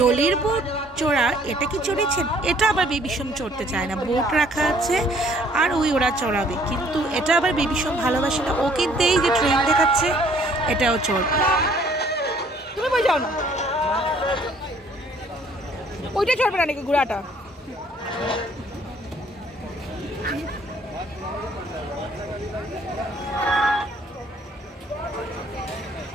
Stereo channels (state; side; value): normal; both; correlation 0.60